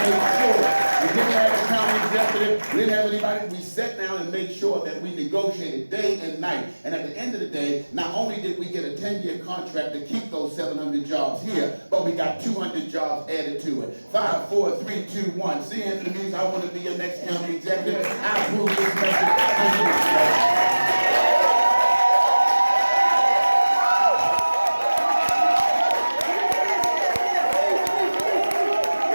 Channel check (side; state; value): both; inverted; correlation -1.00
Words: didn't have a county executive, we didn't have anybody. We sat down and made sure that we negotiated day and night. And at the end of the day, not only did we get a 10-year contract to keep those 700 jobs here, but we got 200 jobs added to it. 5, 4, 3, 2, 1. See, Anthony Means, I want to be your next county executive. I approve this message.